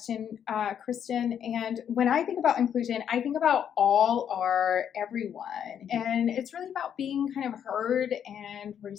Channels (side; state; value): right; quieter; 8.8 dB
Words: Kristen. And when I think about inclusion, I think about all or everyone, and it's really about being kind of heard and